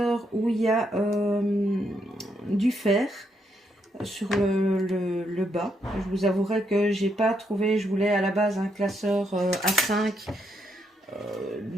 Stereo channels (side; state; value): both; normal; correlation 0.77